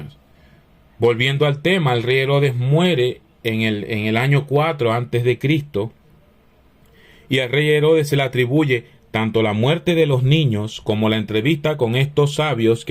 Volviendo al tema, el rey Herodes muere en el año 4 antes de Cristo, y al rey Herodes se le atribuye tanto la muerte de los niños como la entrevista con estos sabios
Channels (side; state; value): both; identical; correlation 1.00